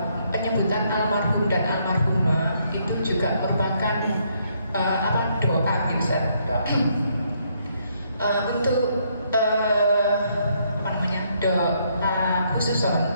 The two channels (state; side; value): inverted; both; correlation -0.72